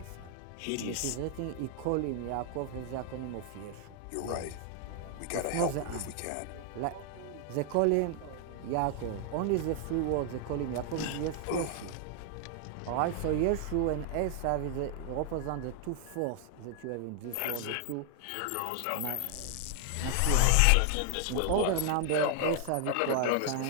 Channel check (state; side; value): different; both; correlation 0.00